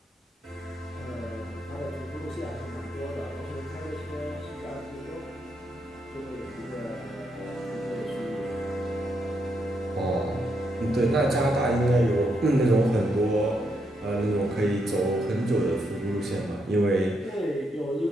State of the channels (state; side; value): normal; both; correlation 0.79